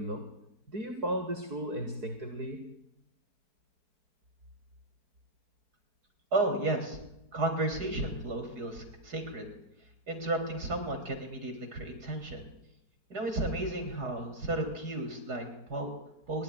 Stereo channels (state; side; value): late; left; 4.8 ms